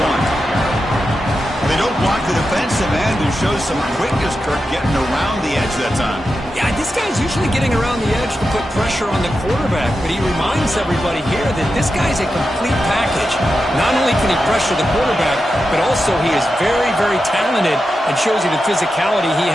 They don't block the defensive end, who shows some quickness, Kirk, getting around the edge that time. Yeah, this guy's usually getting around the edge to put pressure on the quarterback, but he reminds everybody here that this guy's a complete package. Not only can he pressure the quarterback, but also he is very, very talented and shows you the physicality he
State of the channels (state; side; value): normal; both; correlation 0.90